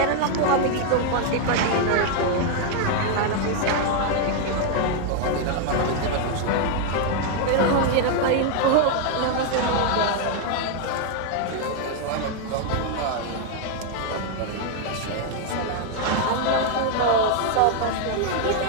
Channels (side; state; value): both; different; correlation 0.00